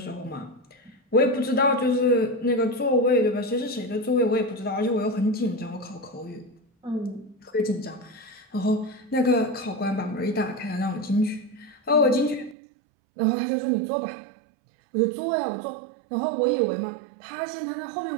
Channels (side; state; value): left; drops out; at 12.6 s